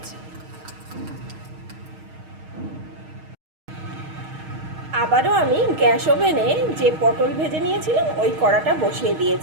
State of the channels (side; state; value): left; late; 6.4 ms